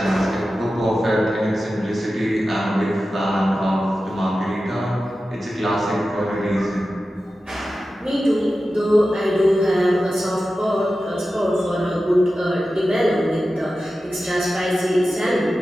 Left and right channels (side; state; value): both; normal; correlation 0.93